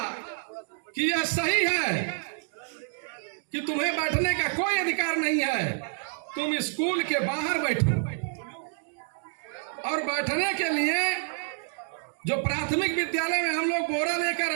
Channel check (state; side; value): silent; left; 59 dB below the other